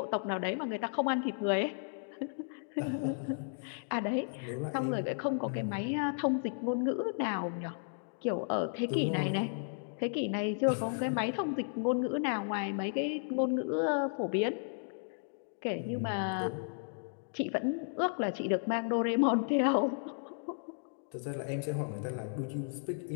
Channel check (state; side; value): silent; right; digital silence